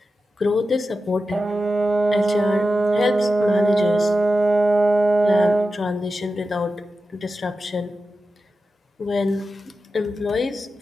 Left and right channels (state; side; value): normal; both; correlation 0.92